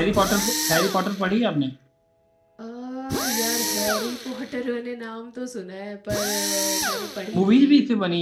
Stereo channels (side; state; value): both; identical; correlation 1.00